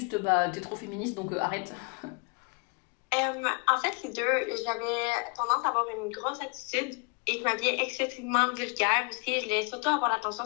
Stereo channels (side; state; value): right; quieter; 33.1 dB